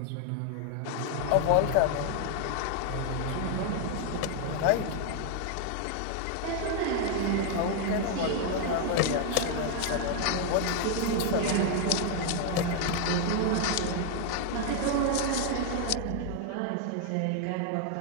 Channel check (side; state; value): both; different; correlation 0.00